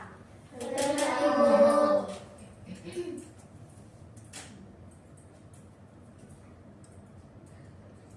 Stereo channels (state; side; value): identical; both; correlation 1.00